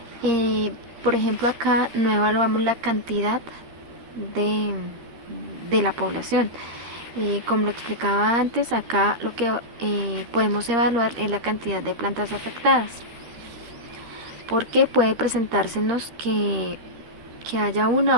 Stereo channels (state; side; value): late; left; 13 ms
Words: Por ejemplo, acá no evaluamos la cantidad de la población. Como lo explicaba antes, acá lo que podemos evaluar es la cantidad de plantas afectadas, porque puede presentársenos que haya